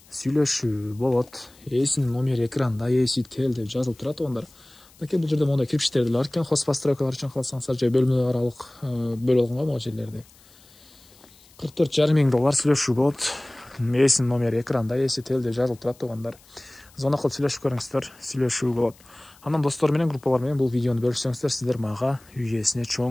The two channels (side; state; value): left; noise; hiss, 27 dB below the sound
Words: Сүйлөшүү болот. Эсинин номери экранда, эси тел деп жазылып турат тугандар. Бул жерде мондай кирпичтер деле бар экен. Хозпостройкалар үчүн калсаңыздар же бөлмө аралык бөлүп алган могу жерлерди. $44,5 миң сүйлөшүү болот. Эсинин номери экранда, эси тел деп жазылып турат тугандар. Звонок кылып сүйлөшүп көрүңүздөр, сүйлөшүү болот. Анан достор менен, группалар менен бул видеону бөлүшсөңүздөр, сиздер мага үй ээсине